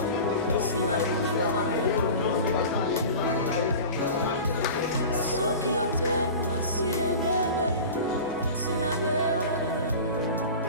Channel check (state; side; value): inverted; both; correlation -0.35